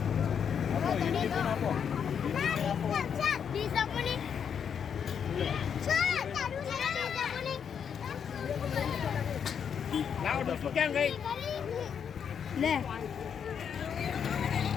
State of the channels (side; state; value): right; quieter; 7.6 dB